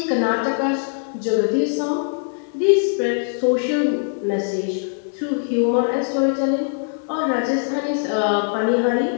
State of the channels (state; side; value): silent; right; 65 dB below the other